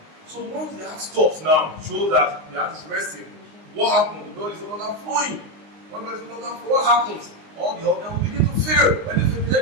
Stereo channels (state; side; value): late; left; 19 ms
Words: So once the heart stops now, shows that the heart is resting. What happens? The blood is no longer flowing. When blood is no longer flowing, what happens? All the organs will begin to fail. When the